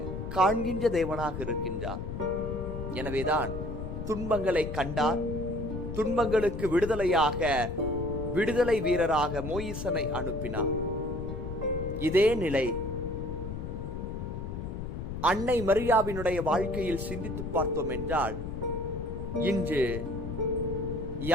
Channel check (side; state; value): left; noise; rumble, 6 dB below the sound